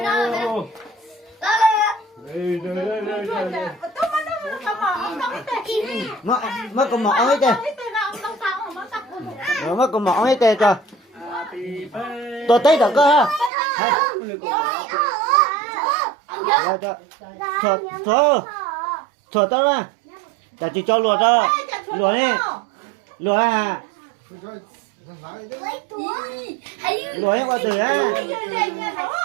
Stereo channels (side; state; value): left; drops out; at 13.5 s